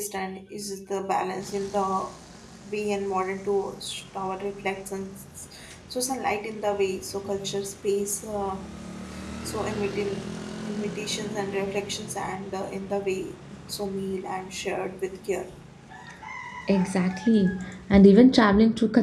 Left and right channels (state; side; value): identical; both; correlation 1.00